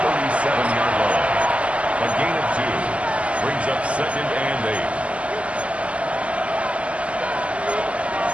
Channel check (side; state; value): left; late; 0.061 ms